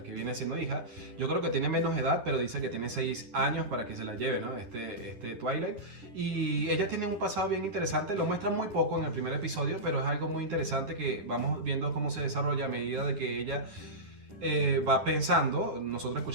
que viene siendo hija, yo creo que tiene menos edad, pero dice que tiene 6 años para que se la lleve, ¿no? Este Twilight. Y ella tiene un pasado bien interesante, lo muestra muy poco en el primer episodio, pero es algo muy interesante que vamos viendo cómo se desarrolla a medida de que ella va pensando, nosotros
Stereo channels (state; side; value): late; left; 11 ms